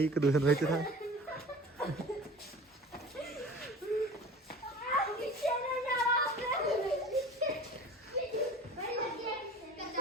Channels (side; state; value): both; normal; correlation 0.40